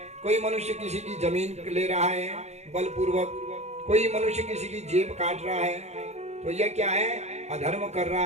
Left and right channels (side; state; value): left; late; 0.32 ms